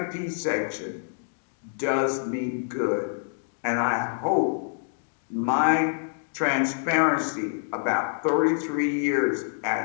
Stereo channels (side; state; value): right; silent; digital silence